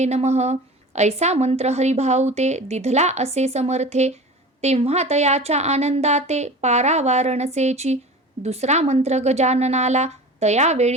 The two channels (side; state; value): both; normal; correlation 0.36